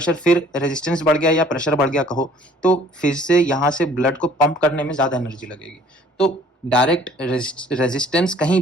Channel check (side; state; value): both; normal; correlation 0.55